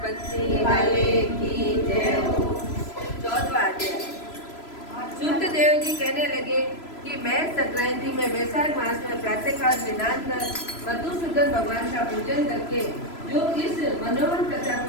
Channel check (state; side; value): late; right; 3.0 ms